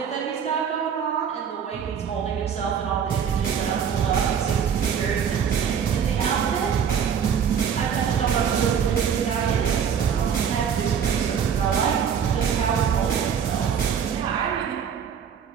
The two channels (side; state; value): left; quieter; 7.6 dB